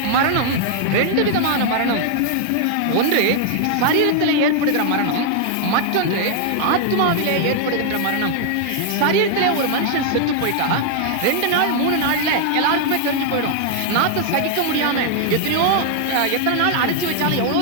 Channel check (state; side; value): different; both; correlation 0.00